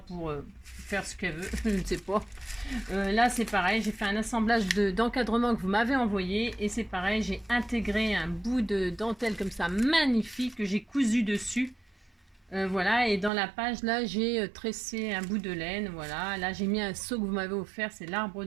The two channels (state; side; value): drops out; left; at 13.3 s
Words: faire ce qu'elle veut. Je ne sais pas. Là, c'est pareil. J'ai fait un assemblage d'encadrement que vous m'avez envoyé. Et c'est pareil, j'ai intégré un bout de dentelle comme ça, magnifique, que j'ai cousu dessus. Voilà, et dans la page là, j'ai tressé un bout de laine. Voilà, là j'ai mis un seau que vous m'avez offert, c'est l'arbre